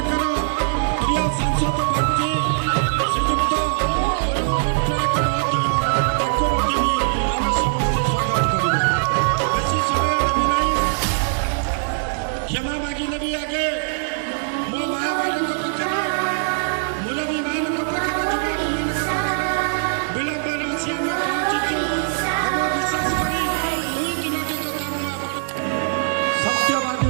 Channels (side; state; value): left; silent; 63 dB below the other